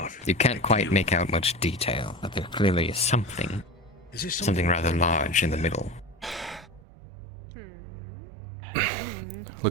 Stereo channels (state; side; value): drops out; left; at 6.8 s